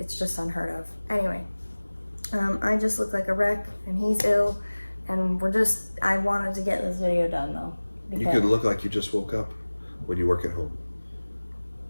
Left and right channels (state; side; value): inverted; both; correlation -1.00